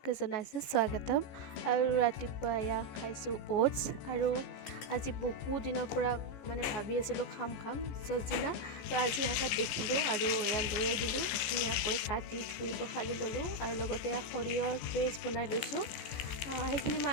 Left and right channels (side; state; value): right; late; 15 ms